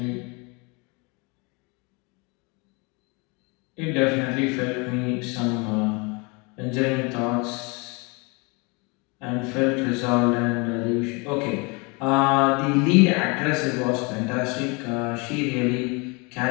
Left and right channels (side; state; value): right; quieter; 29.7 dB